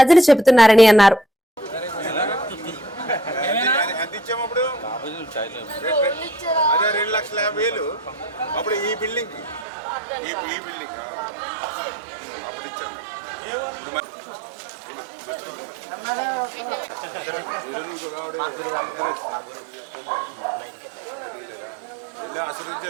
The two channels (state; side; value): drops out; left; at 9.7 s